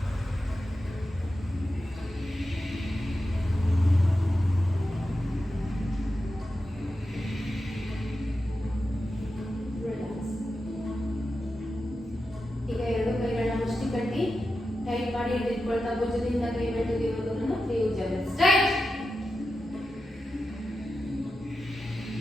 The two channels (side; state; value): both; normal; correlation 0.90